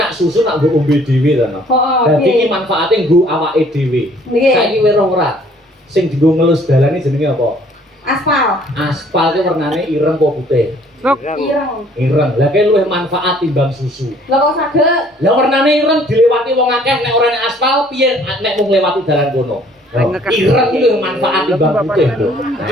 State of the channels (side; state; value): both; normal; correlation 0.59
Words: susu nak nggo ombe dhewe to. Heeh. Dadi iki manfaate nggo awake dhewe. Nggih. Saiki weruh ora? Sing dienggo ngelus dalan iki jenenge apa? Aspal. Aspal ki warnane ireng apa putih? Ireng. Ireng. Lah ki luwih manfaat timbang susu. Lah kok saged? Lah warnane ireng dilewati wong akeh nek ora nek aspal piye nek mung lewati dalan kono. Ireng iki luwih manfaat timbang putih lho.